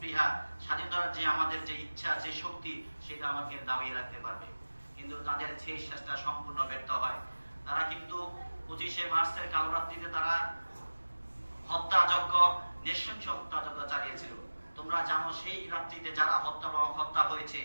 স্বাধীনতার যে আমাদের যে ইচ্ছা, যে শক্তি, সেটা আমাকে দাবিয়ে রাখতে পারবে। কিন্তু তাদের সেই চেষ্টা সম্পূর্ণ ব্যর্থ হয়। তারা কিন্তু 25শে মার্চের কালো রাত্রিতে তারা হত্যাযজ্ঞ, নৃশংস হত্যাযজ্ঞ চালিয়েছিল। তোমরা জানো সেই রাত্রিতে যারা হত্যা হয়েছে,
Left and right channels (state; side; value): inverted; both; correlation -1.00